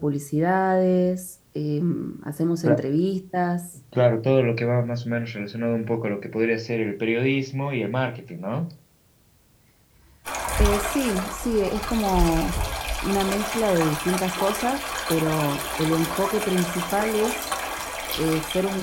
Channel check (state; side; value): identical; both; correlation 1.00